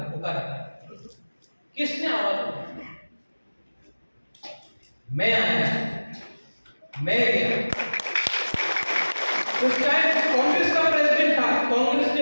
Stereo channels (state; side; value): inverted; both; correlation -1.00